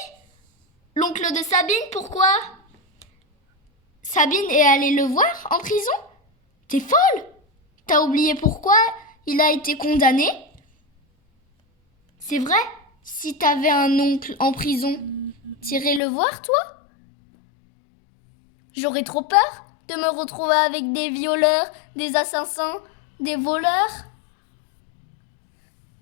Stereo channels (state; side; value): drops out; right; at 16.0 s